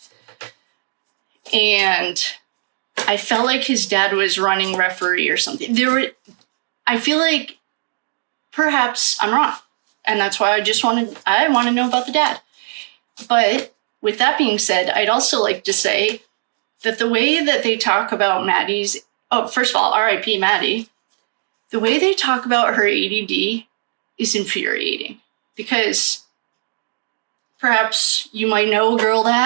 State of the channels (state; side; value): silent; left; digital silence